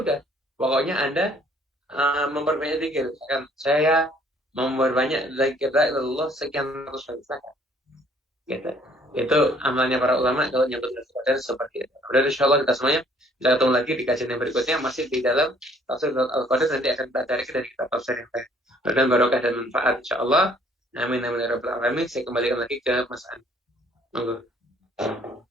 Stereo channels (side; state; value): both; normal; correlation 0.60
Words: Pokoknya Anda memperbanyak zikir. Saya memperbanyak zikir Allah sekian ratus kali zakat. Gitu. Itu amalnya para ulama kalau nyebut Qadar seperti itu. Kemudian insyaallah kita semuanya bisa ketemu lagi di kajian yang berikutnya masih di dalam tafsir Al-Qadar, nanti akan kita cari dari kitab tafsir yang lain. Dan barokah dan manfaat insyaallah. Amin amin ya rabbal alamin. Saya kembalikan lagi ke Mas An. Monggo.